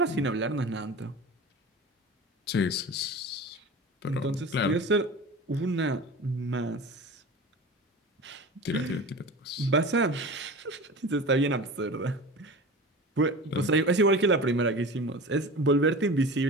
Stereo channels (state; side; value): normal; both; correlation 0.34